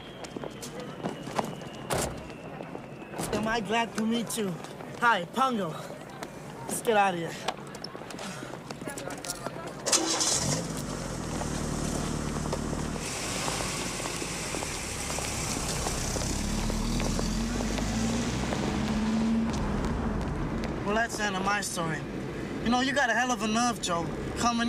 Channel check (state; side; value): identical; both; correlation 1.00